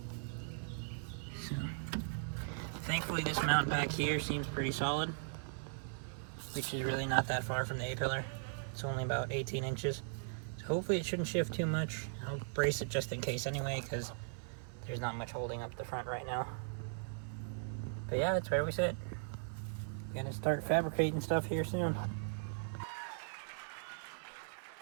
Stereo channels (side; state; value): left; silent; 52 dB below the other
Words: So thankfully this mount back here seems pretty solid, which is really not that far from the A-pillar. It's only about 18 inches. So hopefully it shouldn't shift too much. I'll brace it just in case anyway, because there's not much holding up the front right now. But yeah, that's where we sit. Gonna start fabricating stuff here soon.